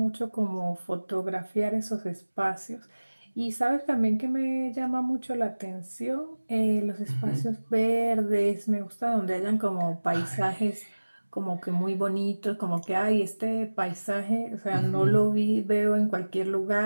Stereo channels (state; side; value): inverted; both; correlation -1.00